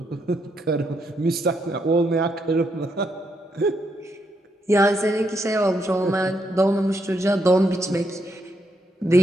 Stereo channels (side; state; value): both; normal; correlation 0.78